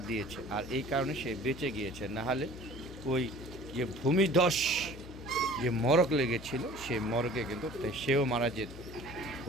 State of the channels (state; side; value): noise; left; hum, 14 dB below the sound